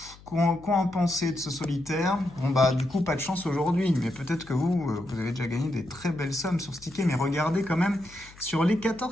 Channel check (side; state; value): left; noise; hum, 22 dB below the sound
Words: quoi en penser de ce solitaire? Bon bah du coup, pas de chance aujourd'hui. Mais peut-être que vous avez déjà gagné des très belles sommes sur ce ticket. Mais regardez quand même, sur les